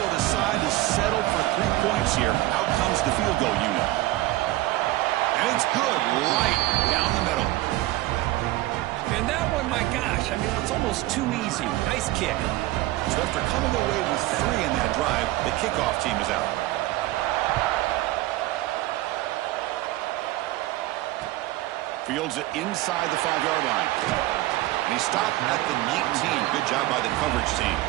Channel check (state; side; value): quieter; left; 17.4 dB